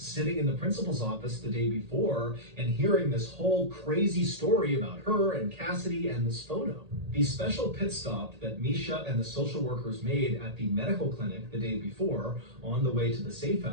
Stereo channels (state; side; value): late; left; 1.8 ms